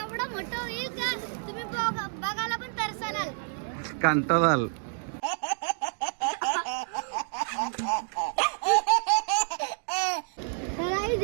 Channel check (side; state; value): left; silent; digital silence